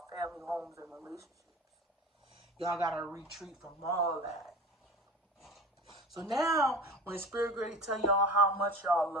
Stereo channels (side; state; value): both; normal; correlation 0.35